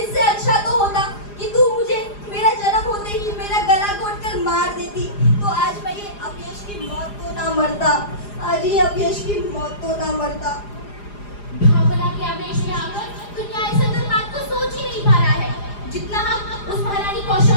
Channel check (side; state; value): right; late; 4.9 ms